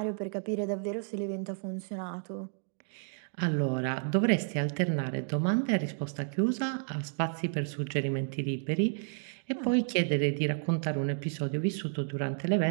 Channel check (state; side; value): silent; left; 57 dB below the other